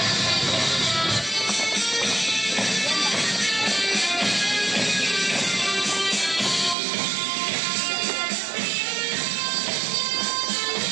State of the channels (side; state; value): left; drops out; at 6.8 s